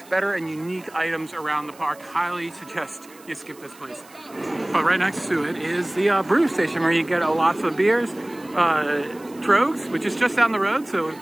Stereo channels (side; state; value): right; noise; hiss, 24 dB below the sound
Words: better and unique items around the park. Highly suggest you skip this place. But right next to it is the brew station where you get lots of beers. Trogs, which is just down the road. So